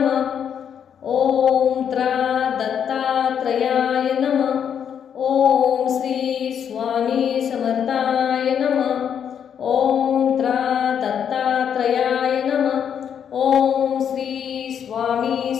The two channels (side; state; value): right; quieter; 8.2 dB